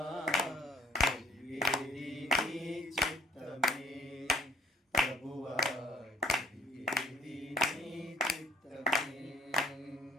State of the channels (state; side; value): normal; both; correlation 0.59